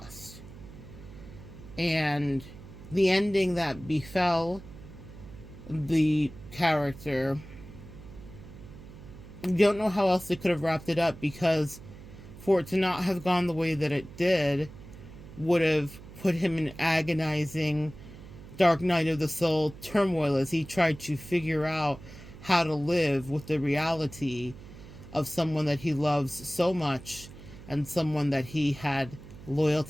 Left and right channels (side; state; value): right; noise; hum, 17 dB below the sound